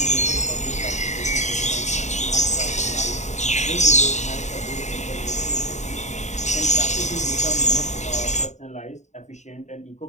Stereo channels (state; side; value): late; right; 0.34 ms